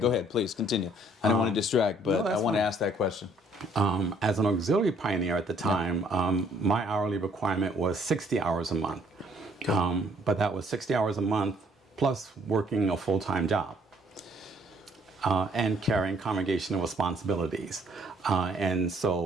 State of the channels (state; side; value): normal; both; correlation 0.63